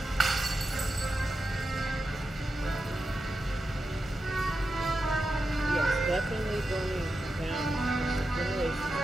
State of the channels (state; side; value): normal; both; correlation 0.89